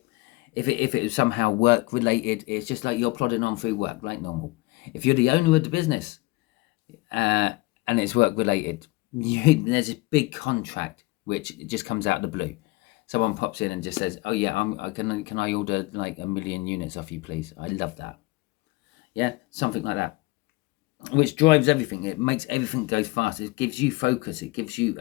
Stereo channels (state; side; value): quieter; right; 22.0 dB